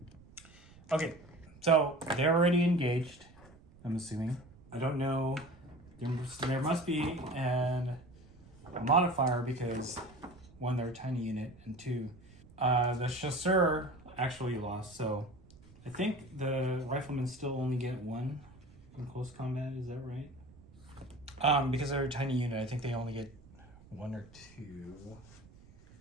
Okay, so they're already engaged, I'm assuming. I don't know. There must be a modifier because 1, they're a tiny unit, and 2, the chasseur actually lost. So I think the riflemen still only get 1 in close combat. Is that right? Because they're a tiny unit, I think they only get 1 or 2.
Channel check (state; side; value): noise; right; rumble, 23 dB below the sound